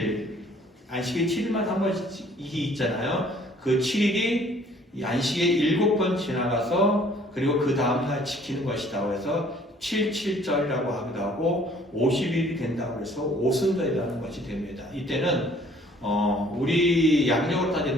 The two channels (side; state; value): both; normal; correlation 0.57